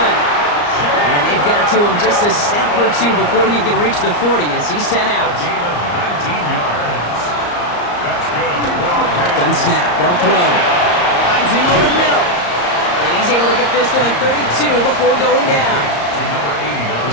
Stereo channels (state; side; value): late; right; 34 ms